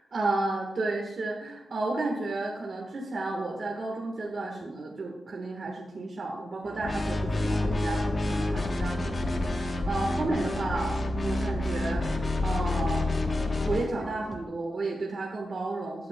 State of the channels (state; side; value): normal; both; correlation 0.89